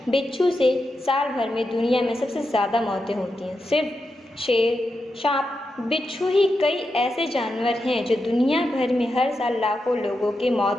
बिच्छू से साल भर में दुनिया में सबसे ज़्यादा मौतें होती हैं। सिर्फ शेर, सांप, बिच्छू ही कई ऐसे जानवर हैं जो दुनिया भर में हर साल लाखों लोगों की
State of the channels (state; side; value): normal; both; correlation 0.87